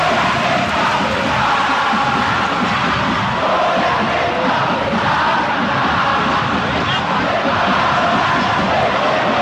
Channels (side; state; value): both; identical; correlation 1.00